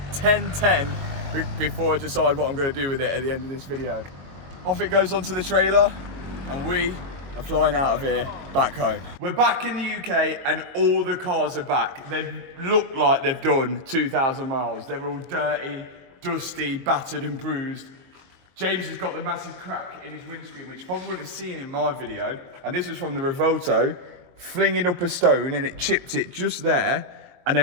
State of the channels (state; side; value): late; left; 22 ms